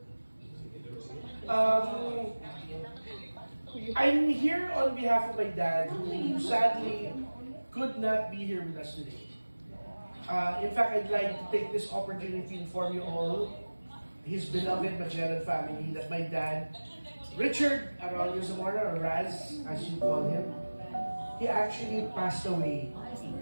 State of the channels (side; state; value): both; inverted; correlation -1.00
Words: I'm here on behalf of my dad, who sadly could not be here with us today. In fact, I'd like to take this opportunity to inform you all, his beloved Magellan family, that my dad, Richard Aurelio Zamora, or Raz, as you call him, he actually passed away